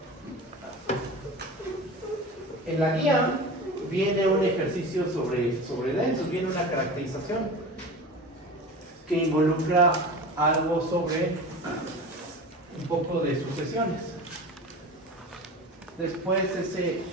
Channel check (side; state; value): both; normal; correlation 0.33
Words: En la guía viene un ejercicio sobre densos, viene una caracterización que involucra algo sobre un poco de sucesiones. Después ese